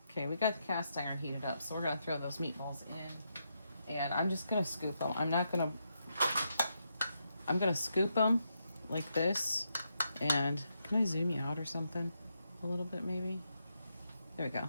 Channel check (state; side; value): inverted; both; correlation -0.82